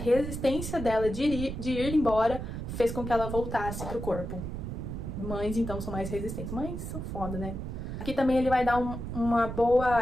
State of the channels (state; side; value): noise; right; rumble, 6 dB below the sound